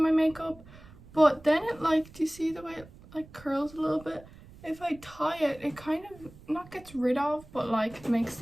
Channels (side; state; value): right; noise; rumble, 21 dB below the sound